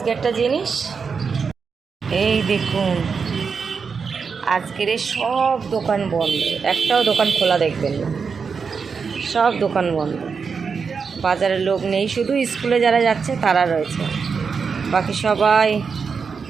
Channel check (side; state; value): left; quieter; 5.6 dB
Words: একটা জিনিস, এই দেখুন, আজকের সব দোকান বন্ধ, একটাও দোকান খোলা দেখবেন না, সব দোকান বন্ধ। বাজারে লোক নেই, শুধু স্কুলে যারা যাচ্ছে তারা রয়েছে, বাকি